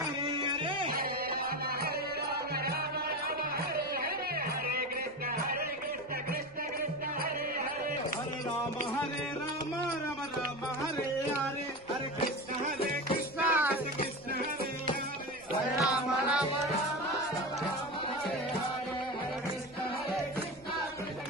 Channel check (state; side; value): noise; left; rumble, 24 dB below the sound